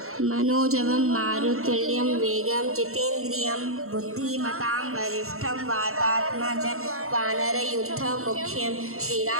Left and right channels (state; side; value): late; left; 0.63 ms